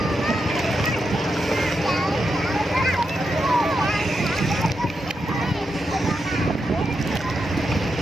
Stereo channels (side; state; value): both; normal; correlation 0.85